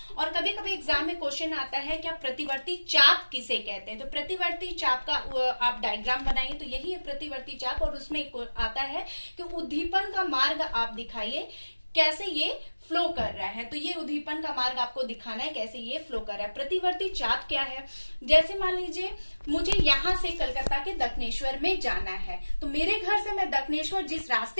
और कभी कभी एग्जाम में क्वेश्चन आता है क्या प्रतिवर्ती चाप किसे कहते हैं। तो प्रतिवर्ती चाप का आप डायग्राम बनाइए, तो यही है प्रतिवर्ती चाप। और उसमें आता है कि उद्दीपन का मार्ग आप दिखाइए कैसे ये फ्लो कर रहा है। तो ये उद्दीपन का मार्ग आपको दिखाना है कैसे ये फ्लो कर रहा है। प्रतिवर्ती चाप क्या है, जैसे मान लीजिए मुझे यहाँ से कलकत्ता के दक्षिणेश्वर में जाना है, तो मेरे घर से मैं दक्षिणेश्वर जिस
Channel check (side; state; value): both; inverted; correlation -1.00